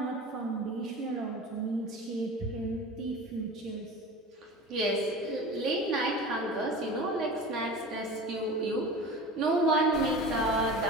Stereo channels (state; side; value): normal; both; correlation 0.34